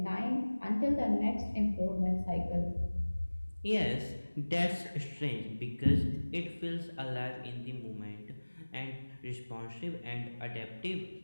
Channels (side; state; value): both; inverted; correlation -1.00